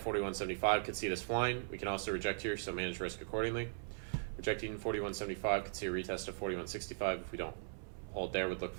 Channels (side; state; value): left; silent; 52 dB below the other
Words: 4175, could see this flying. We can also reject here, so manage risk accordingly. Rejecting 4175 could see a retest of 4165. If we don't hold there, would look